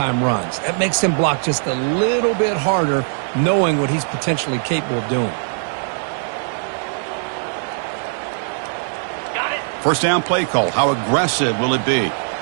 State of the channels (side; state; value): left; silent; 66 dB below the other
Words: runs. That makes them block just a little bit harder, knowing what he's potentially capable of doing. First down play call. How aggressive will it be?